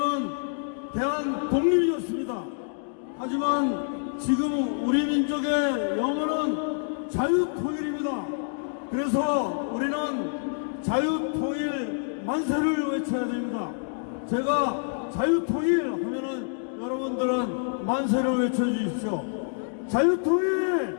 대한 독립이었습니다. 하지만 지금 우리 민족의 영원은 자유통일입니다. 그래서 우리는 자유통일 만세를 외쳐야 됩니다. 제가 자유통일 하면은 여러분들은 만세를 외쳐주십시오.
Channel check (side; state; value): right; silent; digital silence